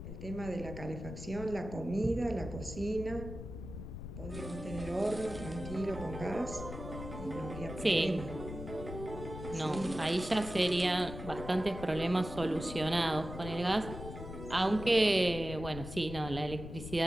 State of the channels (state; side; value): noise; left; rumble, 9 dB below the sound